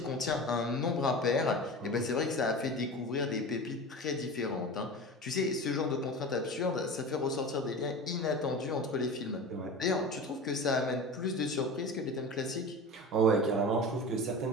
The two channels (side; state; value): both; normal; correlation 0.32